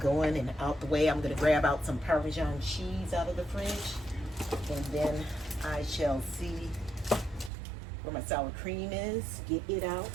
and out the way. I'm going to grab out some Parmesan cheese out of the fridge, and then I shall see where my sour cream is, get it out.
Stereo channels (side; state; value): left; drops out; at 7.5 s